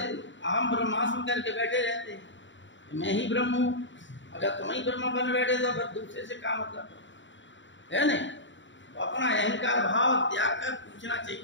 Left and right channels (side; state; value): right; late; 0.54 ms